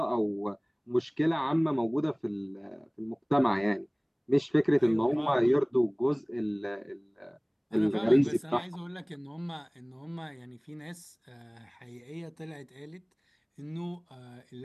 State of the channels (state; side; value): identical; both; correlation 1.00